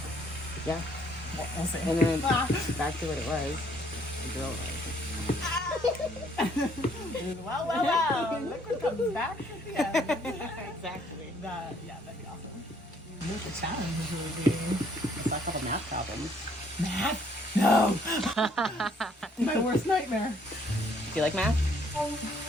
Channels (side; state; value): both; normal; correlation 0.65